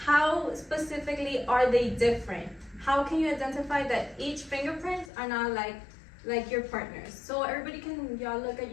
how specifically are they different. How can you identify that each fingerprints are not like your partners? So everybody, can y'all look at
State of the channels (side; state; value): right; drops out; at 5.1 s